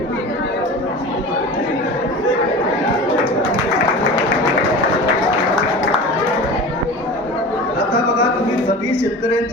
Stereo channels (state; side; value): normal; both; correlation 0.35